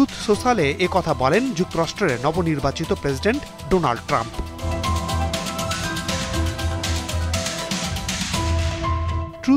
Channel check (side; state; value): both; identical; correlation 1.00